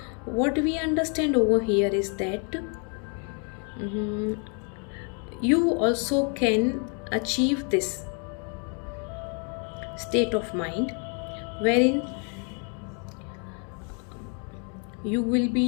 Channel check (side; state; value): right; quieter; 38.9 dB